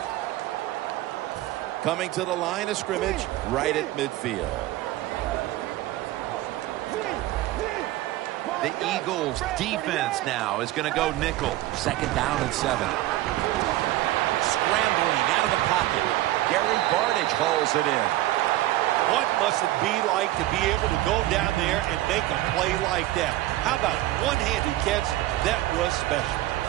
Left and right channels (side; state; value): left; quieter; 16.0 dB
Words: Coming to the line of scrimmage right at midfield. The Eagles defense now is going to go nickel. Second down and 7. Scrambling out of the pocket. Gary Barnidge hauls it in. What must it be like to be able to go down there and make a play like that? How about one-handed catch? That was special.